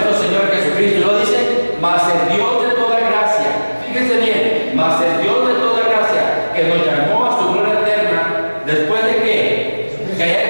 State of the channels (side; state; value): both; inverted; correlation -1.00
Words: Señor Jesucristo. Y lo dice: mas el Dios de toda gracia, fíjense bien, mas el Dios de toda gracia, que nos llamó a su gloria eterna, después de que